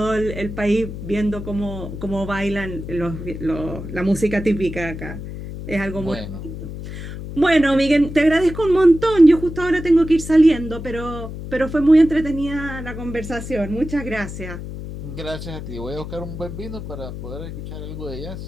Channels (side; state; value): left; noise; hum, 9 dB below the sound